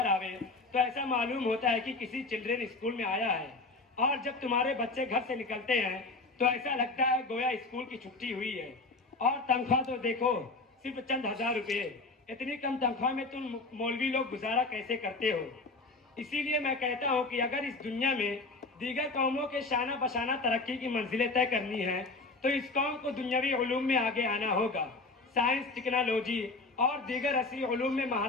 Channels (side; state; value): right; quieter; 3.5 dB